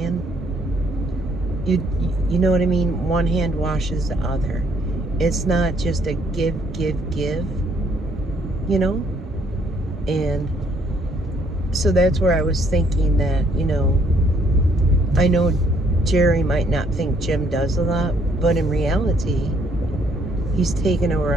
You know what I mean? One hand washes the other. It's not just a give, you know? And so that's where I was thinking that, you know, I know Jerry might not think Jim does a lot, but in reality, he's taken over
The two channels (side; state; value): both; normal; correlation 0.67